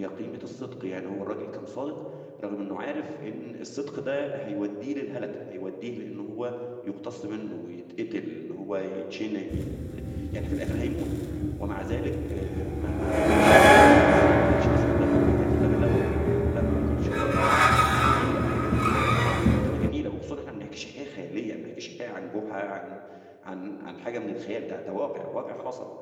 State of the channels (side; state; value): both; identical; correlation 1.00